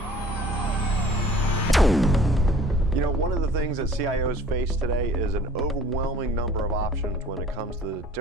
You know, one of the things that CIOs face today is an overwhelming number of options when it comes to the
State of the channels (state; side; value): normal; both; correlation 0.50